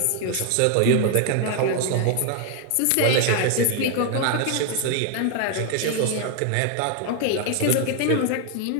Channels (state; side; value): different; both; correlation 0.00